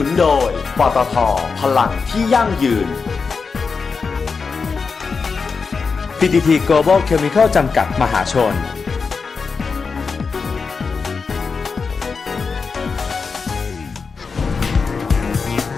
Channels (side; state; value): right; quieter; 5.0 dB